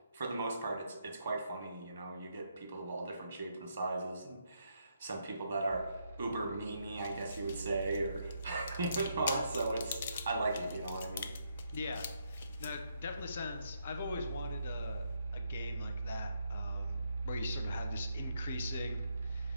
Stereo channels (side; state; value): both; inverted; correlation -0.77